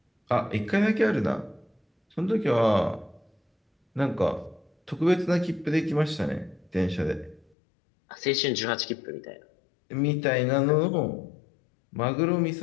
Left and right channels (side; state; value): right; drops out; at 7.5 s